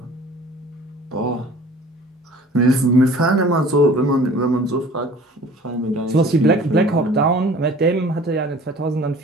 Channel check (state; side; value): normal; both; correlation 0.47